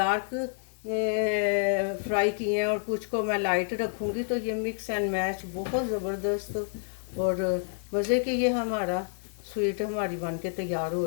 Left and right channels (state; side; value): silent; right; digital silence